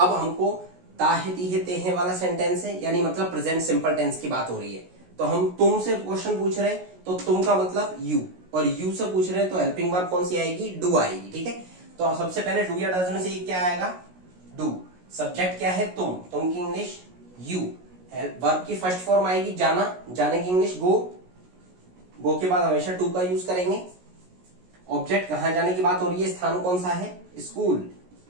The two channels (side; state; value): left; late; 16 ms